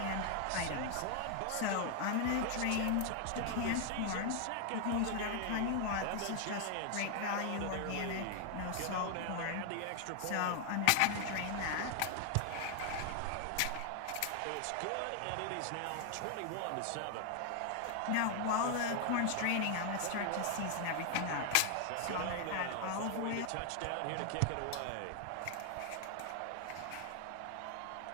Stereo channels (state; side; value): different; both; correlation 0.00